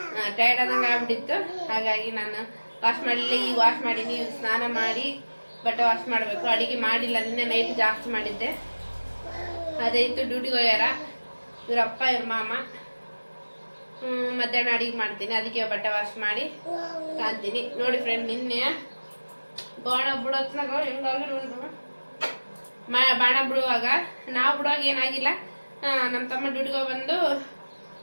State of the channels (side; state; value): both; inverted; correlation -1.00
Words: ಟೈರ್ಡ್ ಆದಂಗೆ ಆಗ್ಬಿಟ್ಟಿತ್ತು. ಹಾಗಾಗಿ ನಾನು ವಾಶ್ ಮಾಡಲಿಲ್ಲ. ಈಗ ವಾಶ್ ಮಾಡೀನಿ. ಸ್ನಾನ ಮಾಡಿ ಬಟ್ಟೆ ವಾಶ್ ಮಾಡಬೇಕು. ಅಡುಗೆ ಮಾಡಿಲ್ಲ, ನಿನ್ನೆ ನೈಟ್ ಜಾಸ್ತಿ ಮಾಡಿದ್ದೆ. ಅದೇ ಇತ್ತು. ಡ್ಯೂಟಿಗೆ ಹೋಗ್ಯಾರ ಇವರಪ್ಪ ಇವ್ರ ಮಾಮ. ಮಧ್ಯಾಹ್ನ ಅಡಿಗೆ ಮಾಡ್ತೀನಿ, ಅದಕ್ಕೆ ಬಟ್ಟೆ ವಾಶ್ ಮಾಡಿ ಕಾಂತೀನಿ. ನೋಡಿ ಫ್ರೆಂಡ್, ನಿನ್ನೆ ಬಾಣ ಬಿಡೋತ್ನಾಗ ಹೆಂಗಾಗಿರು ಬಾಣ ಬಿಡುವಾಗ, ನಾವು ಬಿಡುವಾಗ ಏನಾಗಿಲ್ಲ. ನಮ್ಮ ತಮ್ಮ ಡ್ಯೂಟಿಗೆ ಬಂದು